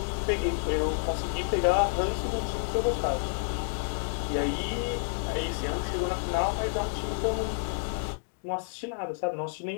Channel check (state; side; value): silent; right; digital silence